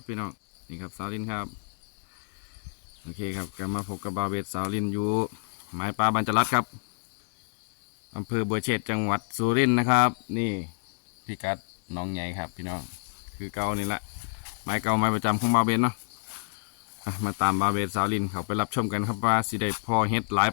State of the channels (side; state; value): right; silent; digital silence